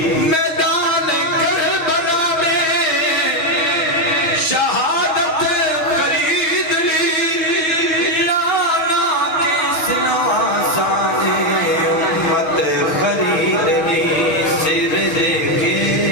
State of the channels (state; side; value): late; right; 6.3 ms